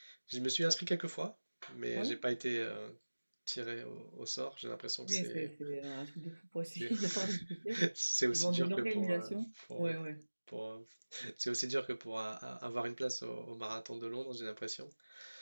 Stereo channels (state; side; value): inverted; both; correlation -1.00